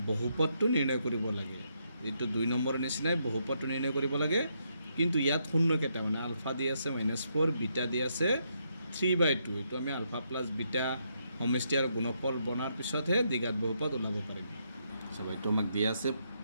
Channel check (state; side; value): inverted; both; correlation -0.77